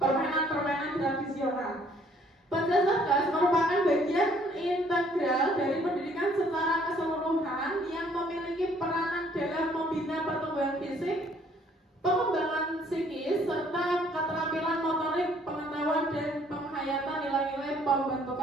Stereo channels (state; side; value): normal; both; correlation 0.62